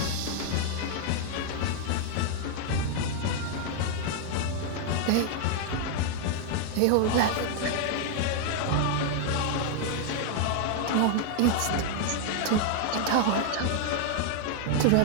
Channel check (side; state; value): both; different; correlation 0.00